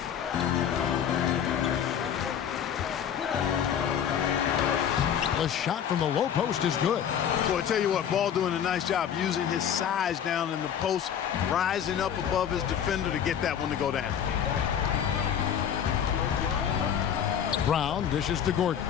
The shot from the low post is good. Boy, I tell you what, Ball doing a nice job using his size down in the post, rising up above his defender to get that one to go down. Brown dishes to Gordon.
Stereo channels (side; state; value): right; quieter; 8.8 dB